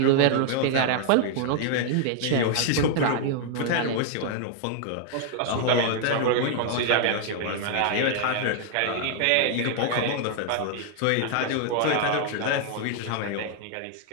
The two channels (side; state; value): both; different; correlation 0.00